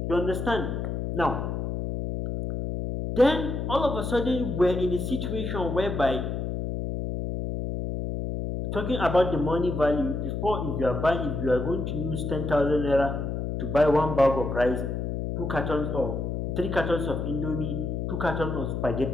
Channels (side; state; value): left; noise; hum, 3 dB below the sound